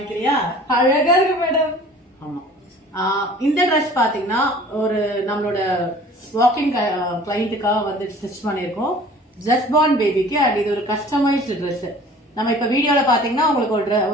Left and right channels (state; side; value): normal; both; correlation 0.47